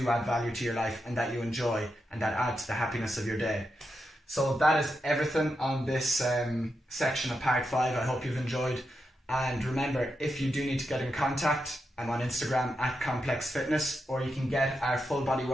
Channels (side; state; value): both; normal; correlation 0.86